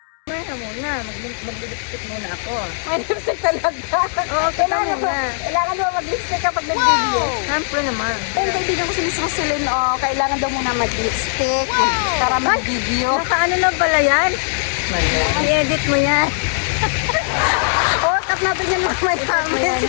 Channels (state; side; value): silent; right; digital silence